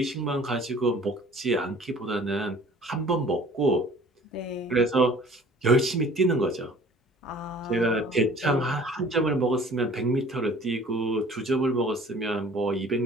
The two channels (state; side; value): normal; both; correlation 0.49